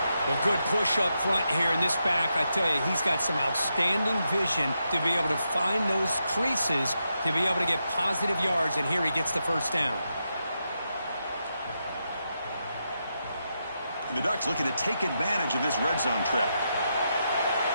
Well, good push up front here in this back. I tell you, he's got some outstanding vision to be able to find those creases, to be able to get positive yards, and here he gets the 1st down. And the Ducks looking to take advantage of this red zone trip.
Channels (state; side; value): inverted; both; correlation -0.84